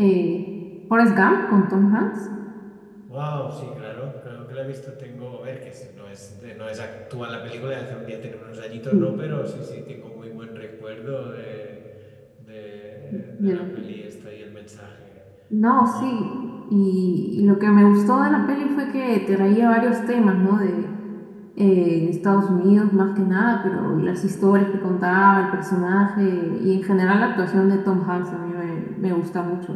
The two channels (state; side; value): identical; both; correlation 1.00